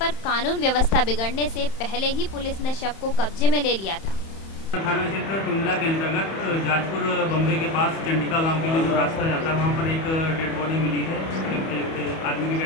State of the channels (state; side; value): late; right; 31 ms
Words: कानून व्यवस्था बिगड़ने से पहले ही पुलिस ने शव को कब्जे में ले लिया था। थाना क्षेत्र टूंडला के अंतर्गत जाजपुर बम्बे के पास चंडिका गांव के लिए जो रास्ता जाता है वहां पर एक डेड बॉडी मिली है। एक आदमी की